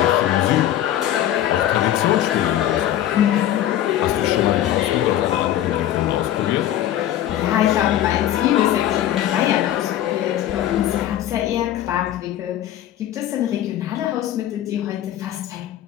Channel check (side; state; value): right; quieter; 12.1 dB